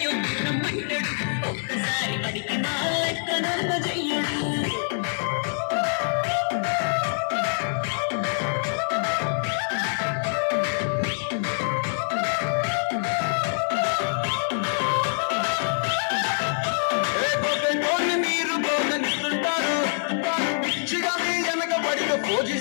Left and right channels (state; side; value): silent; right; 57 dB below the other